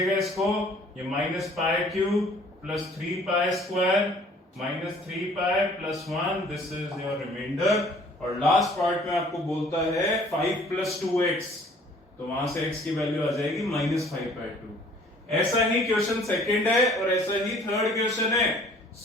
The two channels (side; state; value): both; normal; correlation 0.54